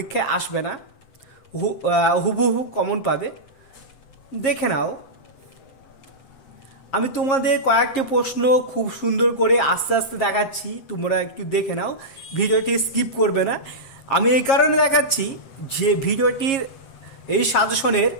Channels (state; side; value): late; right; 7.4 ms